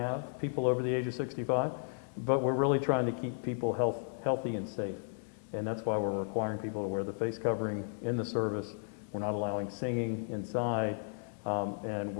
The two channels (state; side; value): silent; right; digital silence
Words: people over the age of 65, but we're really trying to keep people healthy and safe. And that's why we're requiring people to wear the face covering in the service. We're not allowing singing inside, and